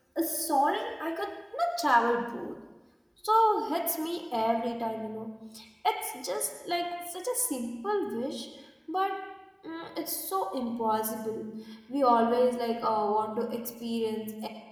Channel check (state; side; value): identical; both; correlation 1.00